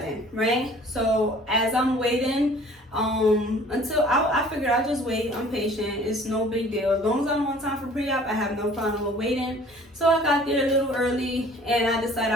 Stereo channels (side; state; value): both; normal; correlation 0.51